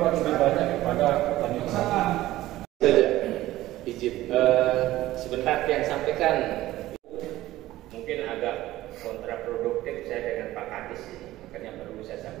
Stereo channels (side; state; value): left; quieter; 15.8 dB